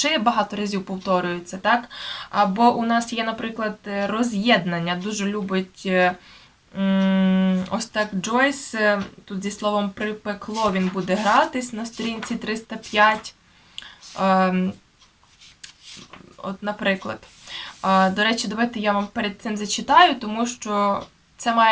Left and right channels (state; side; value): identical; both; correlation 1.00